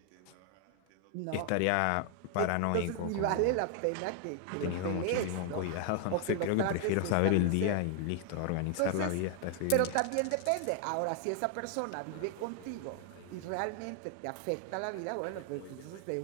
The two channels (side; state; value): both; different; correlation 0.00